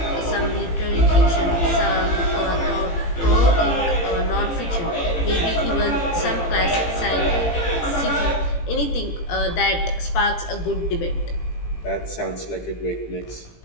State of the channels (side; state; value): right; late; 18 ms